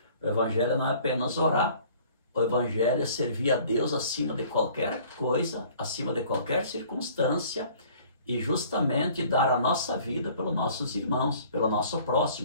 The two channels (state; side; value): inverted; both; correlation -0.53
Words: o evangelho não é apenas orar. O evangelho é servir a Deus acima de qualquer coisa, acima de qualquer circunstância, e justamente dar a nossa vida pelos nossos irmãos, pelo nosso